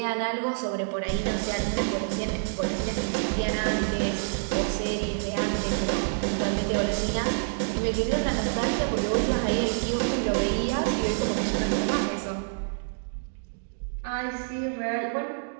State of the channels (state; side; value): silent; left; digital silence